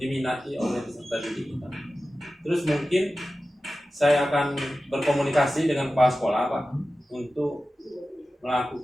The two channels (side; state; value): both; normal; correlation 0.94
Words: oleh peserta didik kita. Terus mungkin saya akan berkomunikasi dengan kepala sekolah Pak untuk